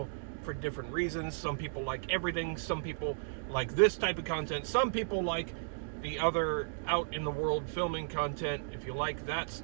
for different reasons. Some people like everything. Some people like this type of content. Some people like the other out in the world filming content. If you like that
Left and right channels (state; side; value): silent; left; digital silence